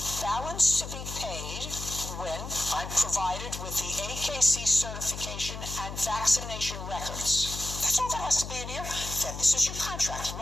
balance to be paid when I'm provided with the AKC certification and vaccination records. That's all that has to be in here. Then this is your contract.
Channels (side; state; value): left; noise; hum, 8 dB below the sound